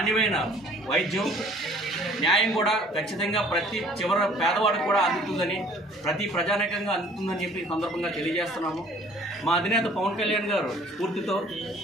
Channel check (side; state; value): both; normal; correlation 0.54